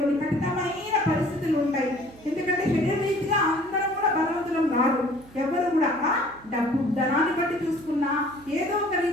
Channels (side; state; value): right; noise; hum, 24 dB below the sound